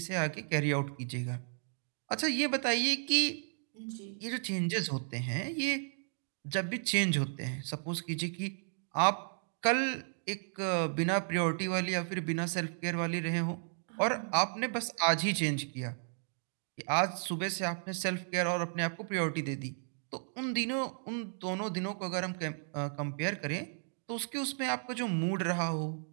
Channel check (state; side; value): silent; left; digital silence